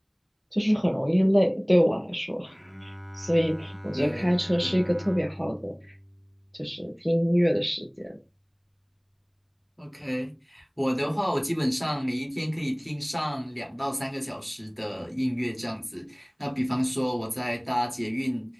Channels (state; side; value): identical; both; correlation 1.00